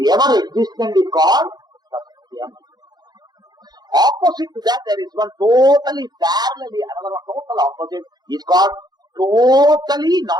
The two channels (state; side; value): late; left; 0.20 ms